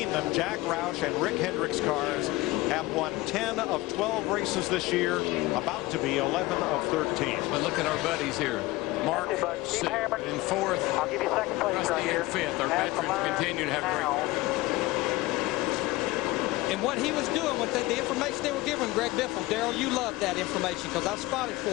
them, Jack Roush and Rick Hendrick's cars have won 10 of 12 races this year, about to be 11 of 13. But look at our buddies here. Mark in 4th, I'll give you second place Rusty right here. in 5th. Our veterans continue to have great. And what he was doing with the information they were giving Greg Biffle, Darrell, you love that information because I've spotted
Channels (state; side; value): quieter; right; 19.8 dB